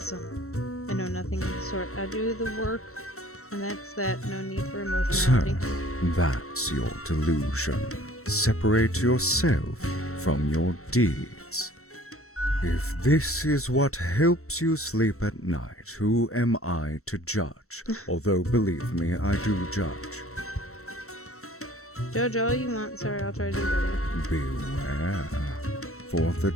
I know nothing of the sort. I do the work, and that's that. No need for emotionality. So, that's your delusion. Separate yourself from your deeds. If this is what helps you sleep at night, who am I to judge? Although, believe me, I do judge. Judge all you want. Sorry, I'll try to do better. Beware, for the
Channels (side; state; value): right; late; 0.63 ms